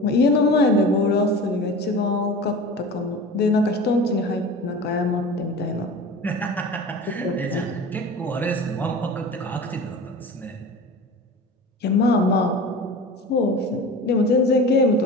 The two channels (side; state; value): both; normal; correlation 0.35